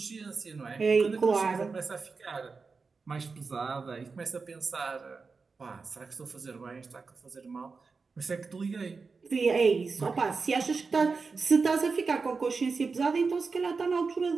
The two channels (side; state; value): left; quieter; 4.6 dB